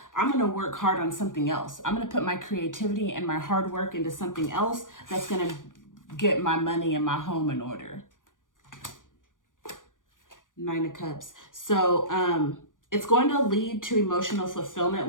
I'm going to work hard on something else. I'm going to put my creativity and my hard work into something else that's going to get my money and my home in order. Nine of Cups. So it's going to lead to emotional fulfillment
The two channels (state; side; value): late; right; 0.88 ms